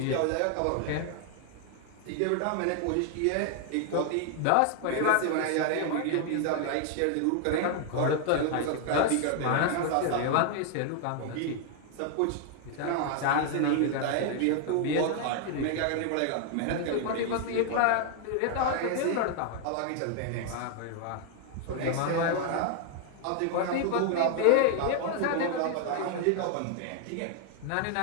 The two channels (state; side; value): different; both; correlation 0.00